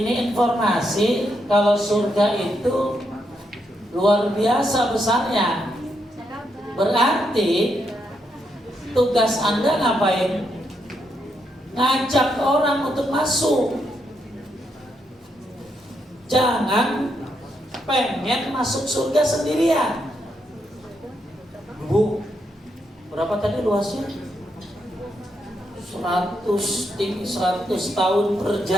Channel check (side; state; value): both; normal; correlation 0.80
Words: informasi kalau surga itu luar biasa besarnya. Berarti tugas Anda ngapain? Ngajak orang untuk masuk. Jangan pengen masuk surga sendirian. Bu, berapa tadi luasnya? 100 tahun